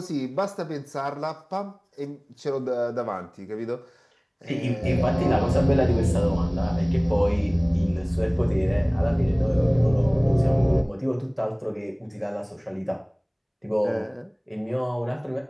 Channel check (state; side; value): identical; both; correlation 1.00